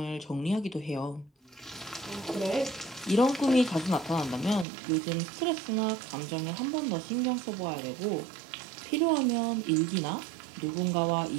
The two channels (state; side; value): drops out; left; at 4.7 s